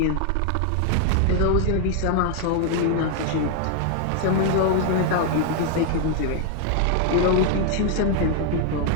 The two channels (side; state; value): both; different; correlation 0.00